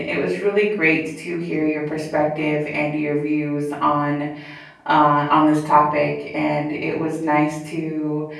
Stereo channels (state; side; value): identical; both; correlation 1.00